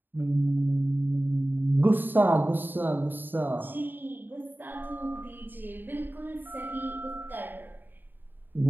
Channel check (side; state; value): left; late; 0.093 ms